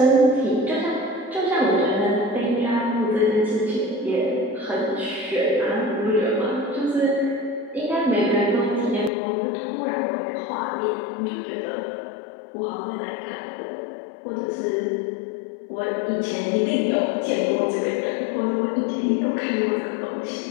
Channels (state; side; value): drops out; right; at 9.1 s